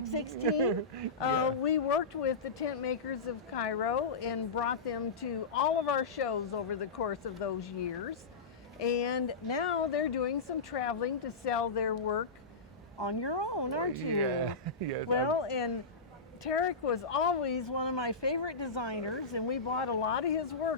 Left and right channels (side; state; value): right; quieter; 4.1 dB